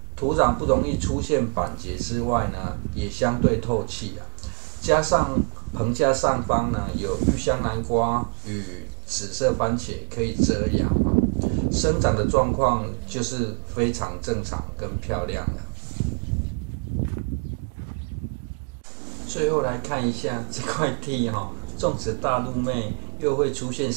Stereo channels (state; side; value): quieter; left; 33.3 dB